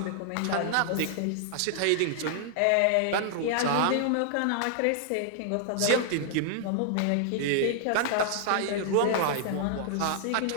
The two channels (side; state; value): both; different; correlation -0.01